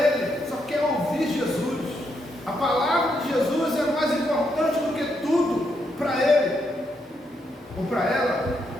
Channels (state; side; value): normal; both; correlation 0.79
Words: só quer ouvir Jesus. A palavra de Jesus é mais importante do que tudo para Ele ou para ela.